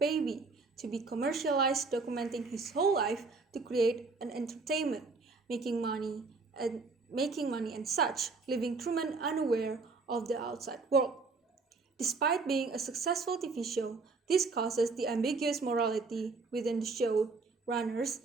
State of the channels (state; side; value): quieter; left; 4.1 dB